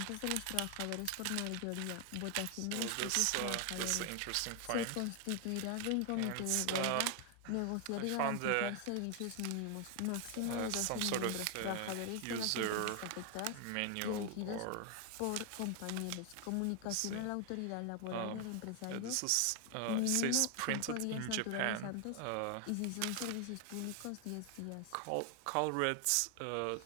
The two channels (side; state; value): both; different; correlation 0.01